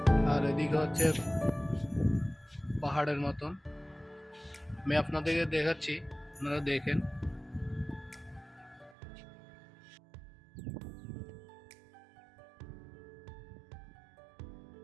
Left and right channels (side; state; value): left; drops out; at 9.0 s